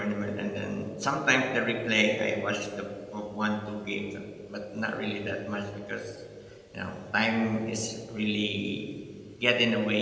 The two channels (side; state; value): both; identical; correlation 1.00